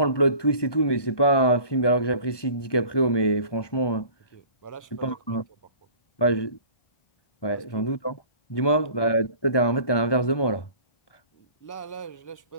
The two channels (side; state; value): right; late; 1.2 ms